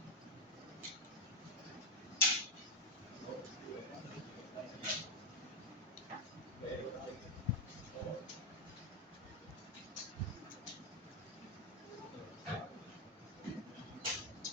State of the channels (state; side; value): normal; both; correlation 0.05